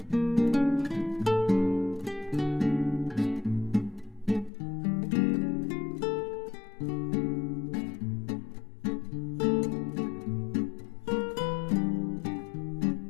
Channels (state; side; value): drops out; right; at 4.5 s